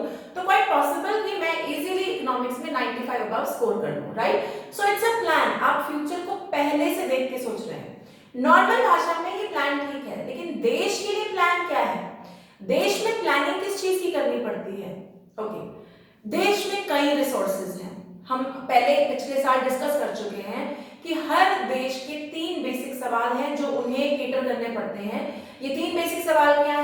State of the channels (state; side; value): identical; both; correlation 1.00